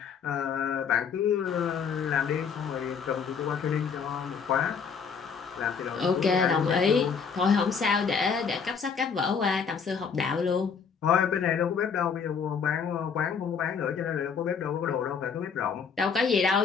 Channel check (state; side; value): quieter; right; 6.2 dB